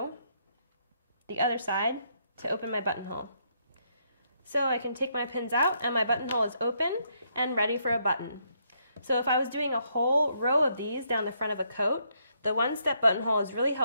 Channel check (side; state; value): both; inverted; correlation -0.74